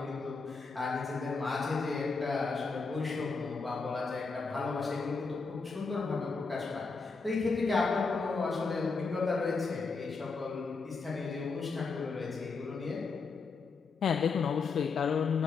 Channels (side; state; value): right; quieter; 4.5 dB